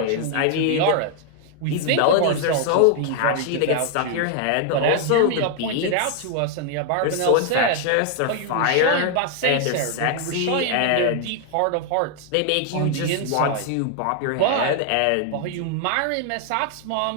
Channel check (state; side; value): different; both; correlation 0.00